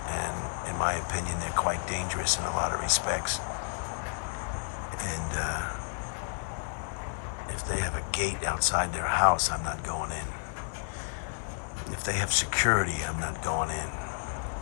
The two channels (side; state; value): right; silent; digital silence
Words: and in my opinion, they're quite dangerous in a lot of respects. And if they have a gate outside their house, I'm not going in. If they have security, I'm not going in.